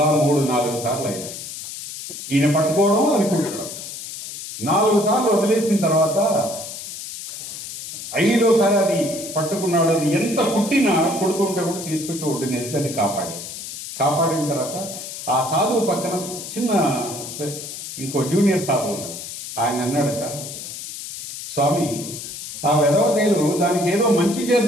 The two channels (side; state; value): left; noise; hiss, 9 dB below the sound